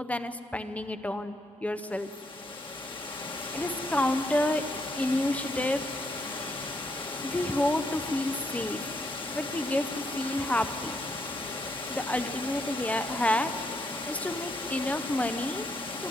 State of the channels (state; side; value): normal; both; correlation 0.75